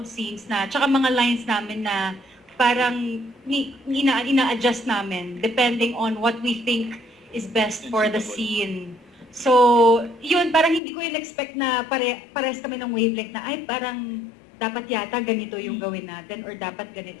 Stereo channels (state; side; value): drops out; right; at 10.8 s